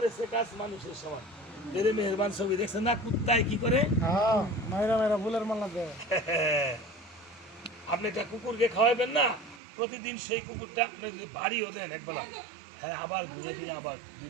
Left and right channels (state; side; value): drops out; left; at 9.6 s